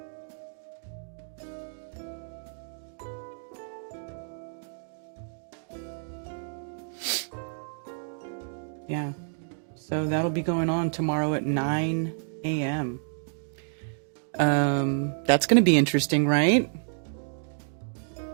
Yeah. So that'll be going on tomorrow at 9 a.m. That's going to be interesting, right?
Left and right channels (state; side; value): silent; left; digital silence